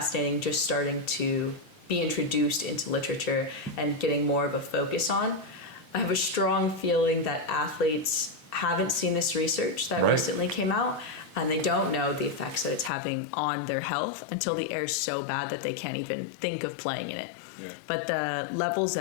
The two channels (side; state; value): right; drops out; at 12.9 s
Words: just starting to be introduced into literature and getting more of a focus on. I have a strong feeling that athletes haven't seen this research that recently came out, and they don't know the effects that it's having on their health until the air is so bad that they can't even think of playing in it. Yeah. But the levels